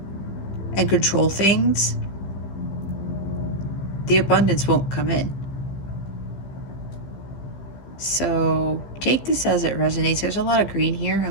and control things, the abundance won't come in. So take this as it resonates. There's a lot of green here.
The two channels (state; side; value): late; right; 15 ms